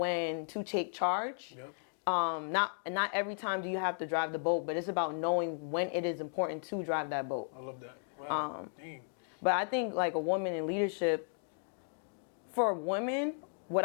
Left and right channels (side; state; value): right; silent; digital silence